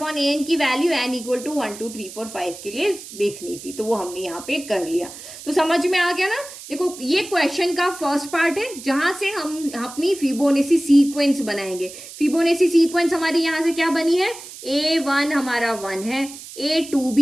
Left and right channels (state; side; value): noise; right; hiss, 14 dB below the sound